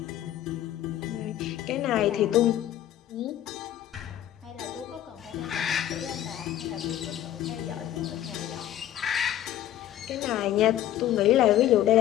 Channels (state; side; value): quieter; right; 12.3 dB